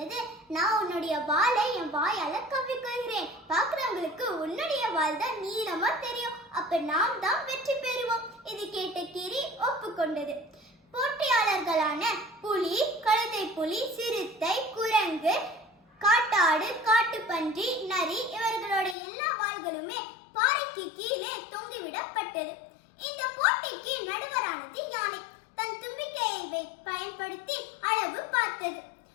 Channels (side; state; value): right; drops out; at 18.9 s